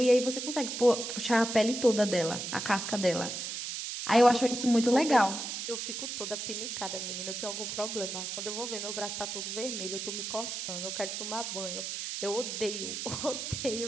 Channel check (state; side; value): noise; right; hiss, 5 dB below the sound